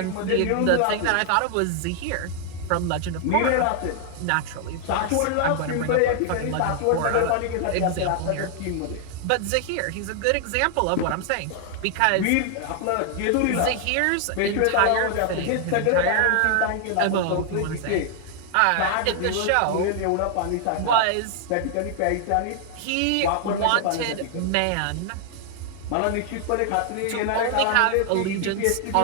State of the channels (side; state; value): both; different; correlation 0.00